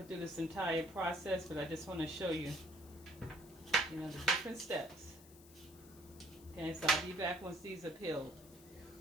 through this entire process, but I just want to show you, the different steps. Okay, so I'll be back once these are peeled.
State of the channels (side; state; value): left; noise; hiss, 21 dB below the sound